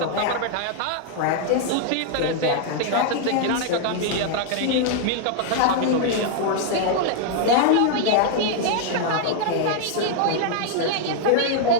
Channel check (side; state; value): both; different; correlation 0.00